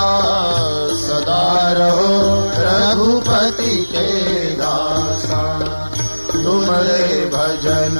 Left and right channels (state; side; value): inverted; both; correlation -1.00